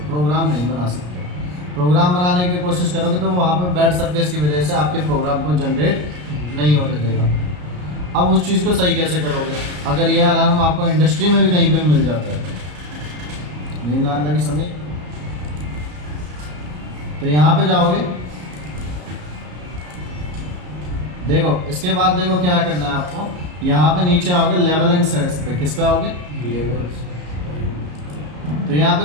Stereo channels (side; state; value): left; late; 33 ms